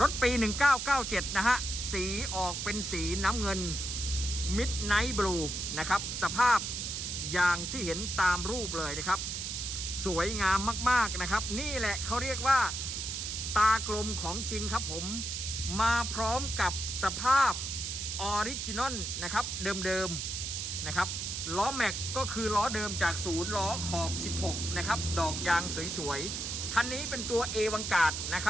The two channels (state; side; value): noise; right; hiss, 4 dB below the sound